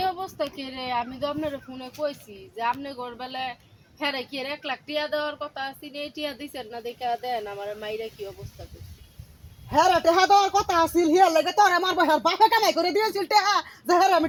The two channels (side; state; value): both; identical; correlation 1.00